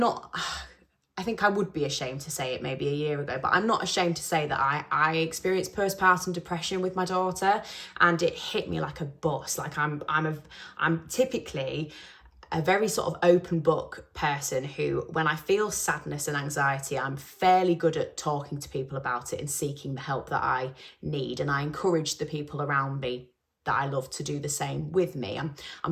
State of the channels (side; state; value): both; identical; correlation 1.00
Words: I think I would be ashamed to say it maybe a year ago, but I'm not ashamed to say that I experienced postpartum depression with my daughter, and it hit me like a bus. Like I'm typically a very sort of open book person who, when I feel sadness and anxiety, I'm fairly good at talking to people about it and seeking the help that I need. And I encourage the people around me that I love to do the same with me.